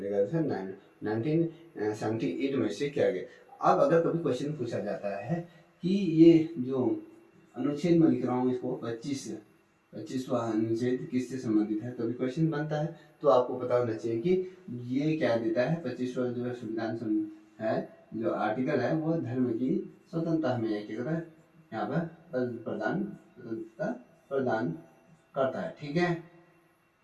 1978 में से किया गया। अब अगर कभी क्वेश्चन पूछा जाता है कि ये जो अनुच्छेद में लिख रहा हूँ इसको 25वां अनुच्छेद किससे संबंधित है, कभी क्वेश्चन बनता है, तो आपको पता होना चाहिए कि ये क्या देता है। 25वां जो संविधान है, जो आर्टिकल है, वो धर्म की स्वतंत्रता हमें यहाँ पर स्वतंत्रता प्रदान करता है, ठीक है,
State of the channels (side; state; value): both; identical; correlation 1.00